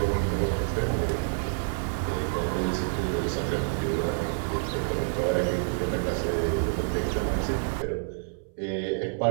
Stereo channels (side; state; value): left; silent; 59 dB below the other